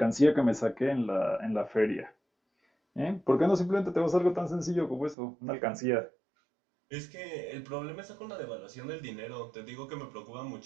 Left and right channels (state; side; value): drops out; left; at 5.2 s